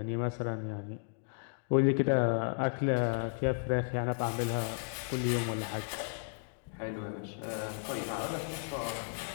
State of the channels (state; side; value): silent; right; digital silence